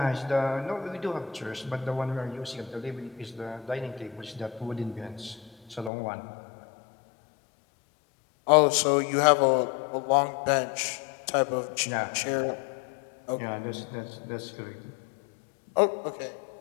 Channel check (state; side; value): drops out; right; at 5.9 s